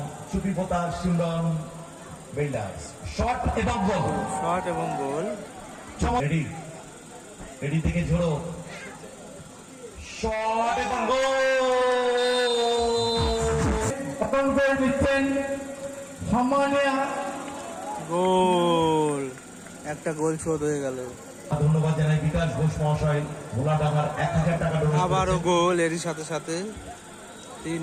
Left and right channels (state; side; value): identical; both; correlation 1.00